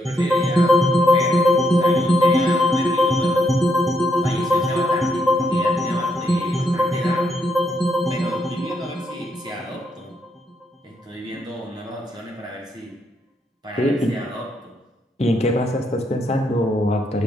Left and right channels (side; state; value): both; normal; correlation 0.76